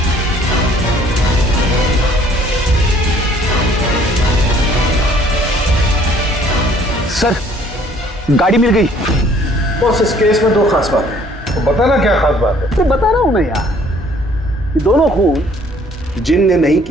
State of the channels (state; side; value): normal; both; correlation 0.59